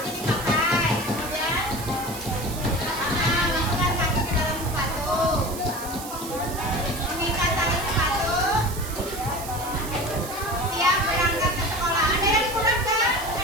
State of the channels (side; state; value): right; noise; hiss, 11 dB below the sound